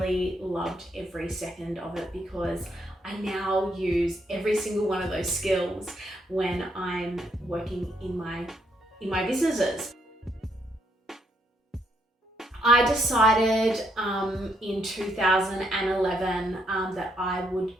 loved every second of it, because I now use every single one of those skills when I'm working in my businesses. I decided in 2011 that I would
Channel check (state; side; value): normal; both; correlation 0.74